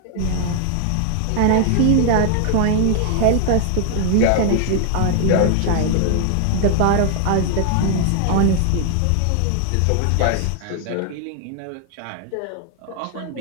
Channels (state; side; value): different; both; correlation 0.00